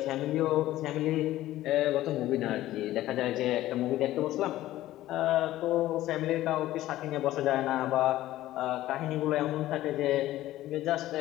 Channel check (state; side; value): quieter; right; 15.0 dB